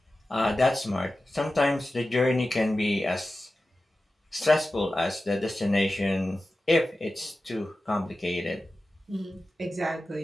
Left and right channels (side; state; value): both; normal; correlation 0.94